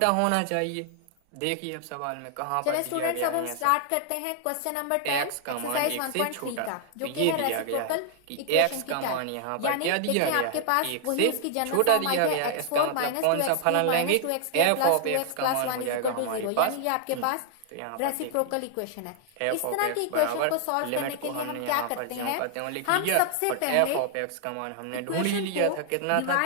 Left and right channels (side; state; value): both; different; correlation 0.00